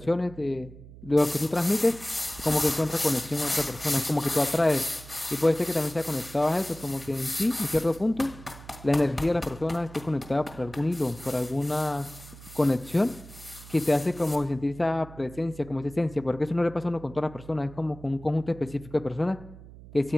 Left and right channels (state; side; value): noise; right; hum, 18 dB below the sound